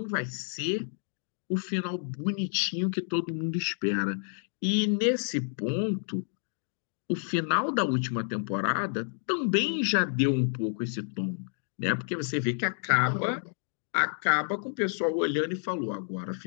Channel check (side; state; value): right; silent; digital silence